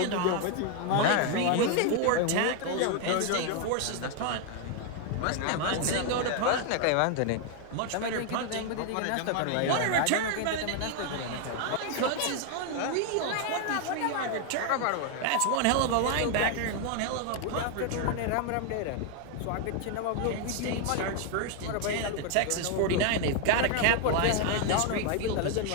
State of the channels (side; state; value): both; different; correlation 0.01